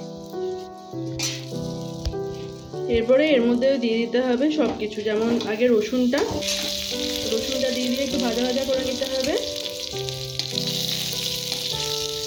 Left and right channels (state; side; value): identical; both; correlation 1.00